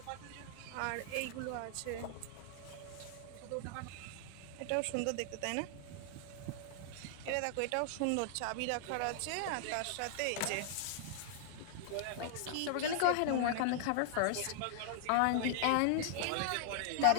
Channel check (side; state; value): both; different; correlation 0.00